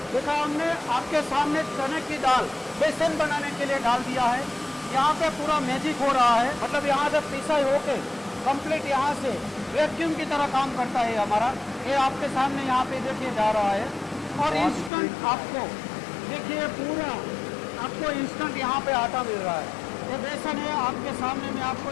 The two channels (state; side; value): drops out; right; at 14.9 s